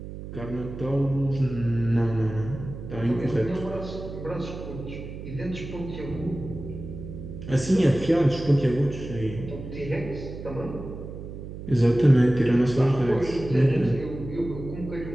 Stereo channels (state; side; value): noise; right; hum, 10 dB below the sound